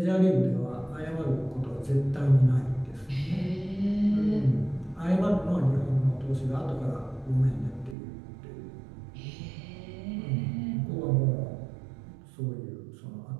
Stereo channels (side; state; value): left; drops out; at 8.0 s